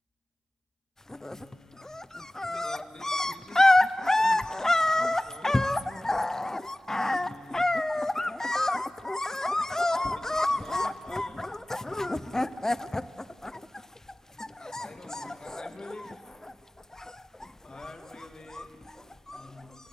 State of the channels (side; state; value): both; normal; correlation 0.98